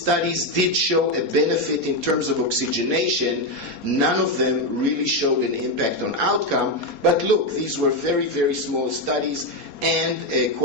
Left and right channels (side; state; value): right; late; 4.3 ms